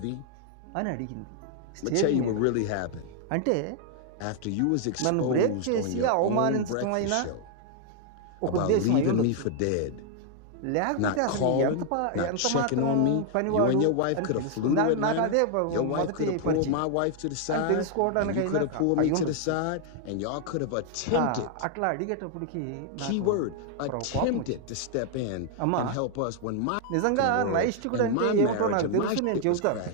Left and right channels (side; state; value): both; different; correlation 0.00